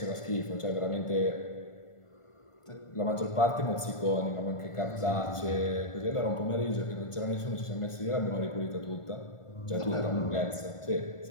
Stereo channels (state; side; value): late; right; 1.5 ms